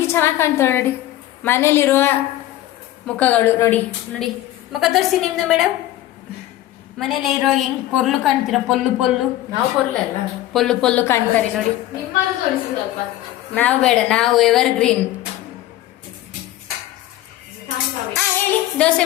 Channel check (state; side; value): quieter; right; 14.5 dB